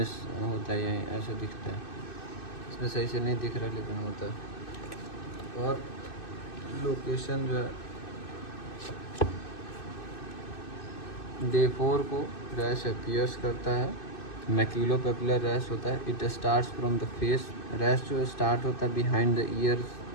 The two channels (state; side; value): late; right; 2.6 ms